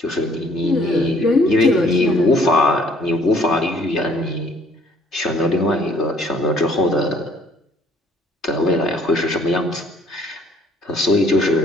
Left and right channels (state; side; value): normal; both; correlation 0.60